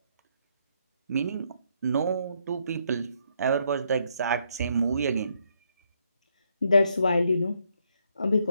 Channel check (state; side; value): inverted; both; correlation -0.74